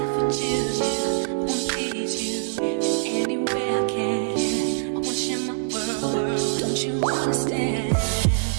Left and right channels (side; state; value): left; silent; digital silence